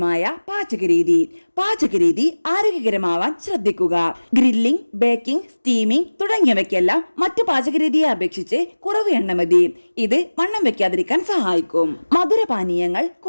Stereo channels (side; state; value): both; inverted; correlation -1.00